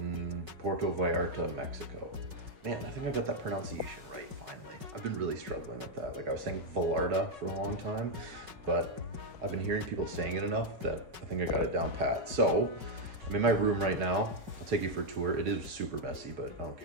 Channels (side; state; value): left; late; 5.4 ms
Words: Puerto Vallarta, Mexico. Man, I think I got that pronunciation right, finally. I've been really struggling with that. Like I was saying Vallarta for a long time, but I've been hearing people saying it enough that I think I got it down pat. So, I'm in my room right now. I'll take you for a tour. It is super messy, but I don't